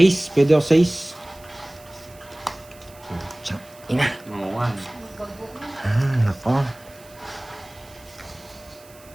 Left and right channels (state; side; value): noise; right; hiss, 24 dB below the sound